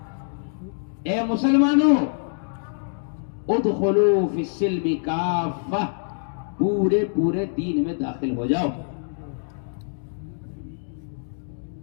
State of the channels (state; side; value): silent; right; digital silence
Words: اے مسلمانوں، ادخلوا فی السلم کافہ، پورے دین میں داخل ہو جاؤ۔